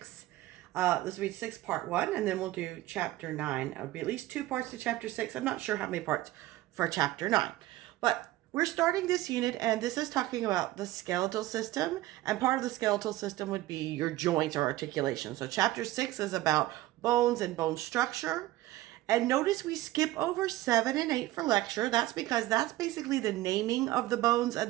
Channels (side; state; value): left; quieter; 16.6 dB